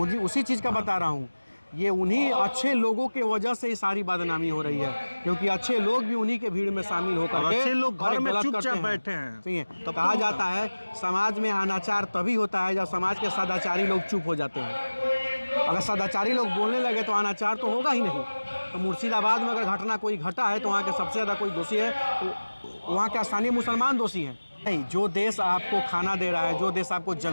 उसी चीज़ का बता रहा हूँ। ये उन्हीं अच्छे लोगों के वजह से ये सारी बदनामी हो रही है, क्योंकि अच्छे लोग भी उन्हीं के भीड़ में शामिल होकर के अच्छे लोग घर में गलत चुपचाप करते बैठे हैं। सही है। तो कहा जाता है समाज में अनाचार तभी होता है जब समाज के सदाचारी लोग चुप हो जाते हैं। अगर सदाचारी लोग बोलने लगे तो अनाचार तो होगा ही नहीं। तो मुर्शिदाबाद में अगर घटना कोई घटा है तो वहाँ के सबसे ज़्यादा कोई दोषी है तो वहाँ के स्थानीय मुसलमान दोषी हैं। नहीं, जो देश आपको खाना दे रहा है, जो देश आपको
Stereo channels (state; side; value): inverted; both; correlation -1.00